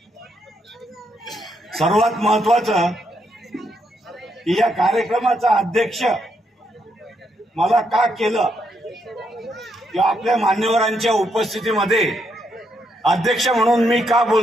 सर्वात महत्वाचं, की या कार्यक्रमाचा अध्यक्ष मला का केलं किंवा आपल्या मान्यवरांच्या उपस्थितीमध्ये अध्यक्ष म्हणून मी का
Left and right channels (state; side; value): normal; both; correlation 0.78